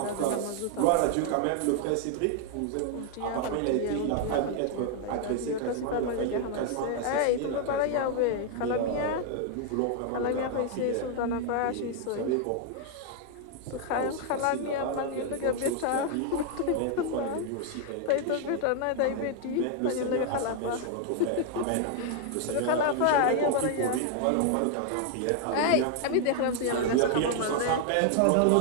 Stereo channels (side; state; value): both; different; correlation 0.00